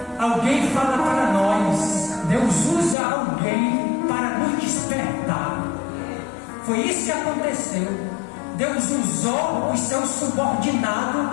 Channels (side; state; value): right; drops out; at 3.0 s